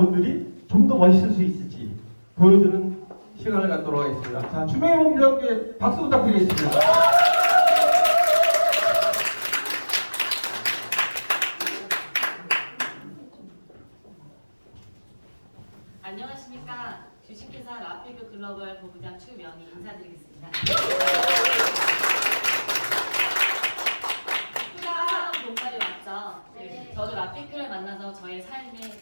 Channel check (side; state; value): both; inverted; correlation -1.00